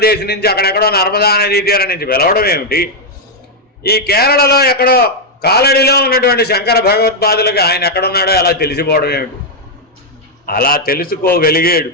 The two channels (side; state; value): both; normal; correlation 0.00